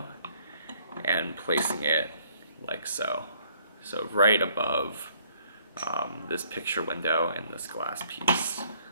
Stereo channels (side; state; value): both; inverted; correlation -0.63